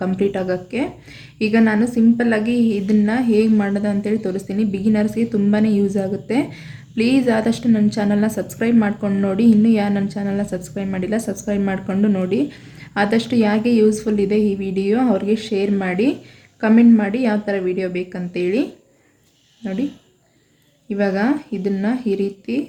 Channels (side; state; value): both; identical; correlation 1.00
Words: ಕಂಪ್ಲೀಟ್ ಆಗೋಕ್ಕೆ. ಈಗ ನಾನು ಸಿಂಪಲ್ಲಾಗಿ ಇದನ್ನು ಹೇಗೆ ಮಾಡೋದು ಅಂತೇಳಿ ತೋರಿಸ್ತೀನಿ. ಬಿಗಿನರ್ಸ್ಗೆ ತುಂಬಾ ಯೂಸ್ ಆಗುತ್ತೆ. ಪ್ಲೀಸ್ ಆದಷ್ಟು ನನ್ನ ಚಾನಲ್ನ ಸಬ್ಸ್ಕ್ರೈಬ್ ಮಾಡ್ಕೊಂಡು ನೋಡಿ. ಇನ್ನೂ ಯಾರು ನನ್ನ ಚಾನಲ್ನ ಸಬ್ಸ್ಕ್ರೈಬ್ ಮಾಡಿಲ್ಲ, ಸಬ್ಸ್ಕ್ರೈಬ್ ಮಾಡಿಕೊಂಡು ನೋಡಿ. ಆದಷ್ಟು ಯಾಕೆ ಯೂಸ್ಫುಲ್ ಇದೆ ಈ ವಿಡಿಯೋ ಅವ್ರಿಗೆ ಶೇರ್ ಮಾಡಿ, ಕಮೆಂಟ್ ಮಾಡಿ ಯಾವ ಥರ ವಿಡಿಯೋ ಬೇಕಂತೇಳಿ. ನೋಡಿ, ಇವಾಗ ಇದನ್ನು ಈ ರೀತಿ